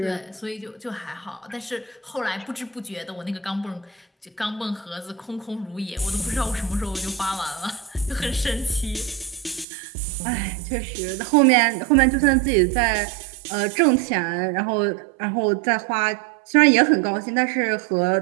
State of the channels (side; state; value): left; drops out; at 9.7 s